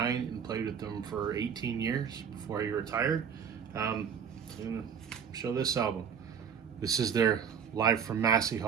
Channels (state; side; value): quieter; left; 7.4 dB